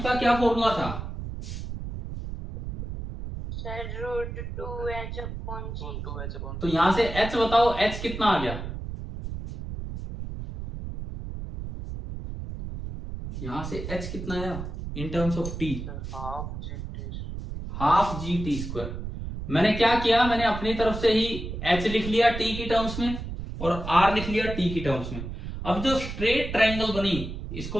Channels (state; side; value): noise; right; rumble, 7 dB below the sound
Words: का क्या फॉर्मूला था? Sir √2h/g। तो यहां से h बताओ, h कितना आ गया? यहां से h कितना आया in terms of t? Half g t square. मैंने क्या किया, मैंने अपनी तरफ से ही h लिख लिया t की टर्म्स में और r लिख लिया t की टर्म्स में। अब जो स्ट्रेट ट्रायंगल बनी, इसको